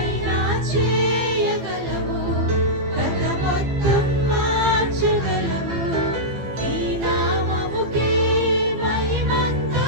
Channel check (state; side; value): late; left; 15 ms